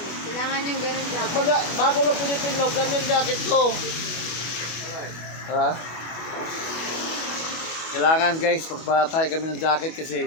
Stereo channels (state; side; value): late; right; 25 ms